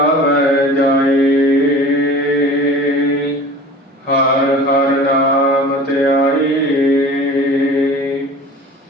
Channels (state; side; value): normal; both; correlation 0.40